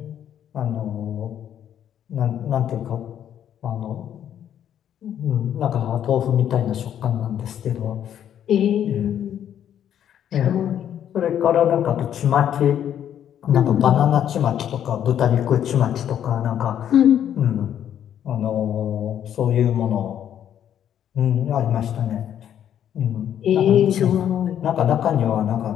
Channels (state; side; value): quieter; right; 10.0 dB